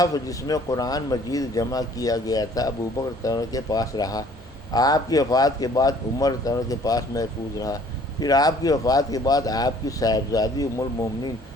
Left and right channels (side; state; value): both; normal; correlation 0.56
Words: جس میں قرآن مجید جمع کیا گیا تھا ابو بکر رضی کے پاس رہا، آپ کی وفات کے بعد عمر رضی کے پاس محفوظ رہا، پھر آپ کی وفات کے بعد آپ کی صاحبزادی ام المومنین